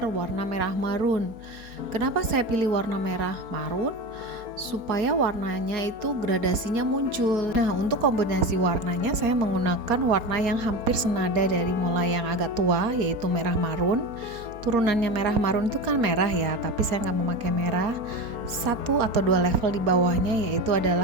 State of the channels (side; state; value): left; late; 4.3 ms